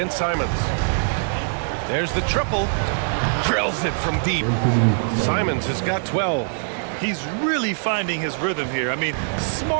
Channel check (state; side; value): silent; left; digital silence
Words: Simons. There's the triple. Drills it from deep. Simons has got 12. He's really finding his rhythm here. I mean,